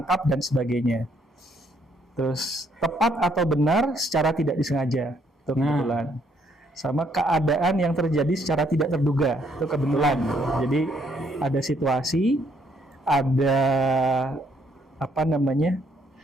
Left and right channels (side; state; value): both; normal; correlation 0.69